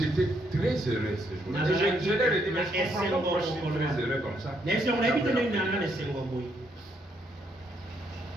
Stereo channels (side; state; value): both; normal; correlation 0.73